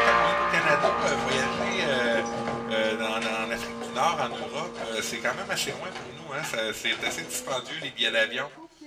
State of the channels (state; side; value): identical; both; correlation 1.00